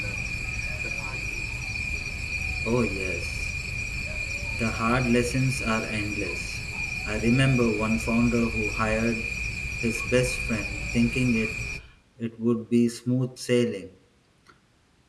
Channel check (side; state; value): both; identical; correlation 1.00